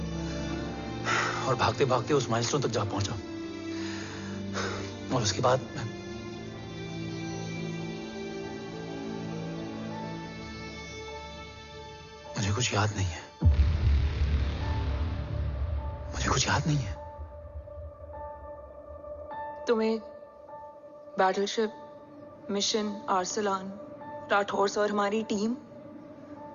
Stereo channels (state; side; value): identical; both; correlation 1.00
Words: और भागते भागते उस माइलस्टोन तक जा पहुंचा। और उसके बाद मुझे कुछ याद नहीं है। मुझे कुछ याद नहीं है। तुम्हें बैटलशिप, मिशन, आर्सलान, राठौर और हमारी टीम,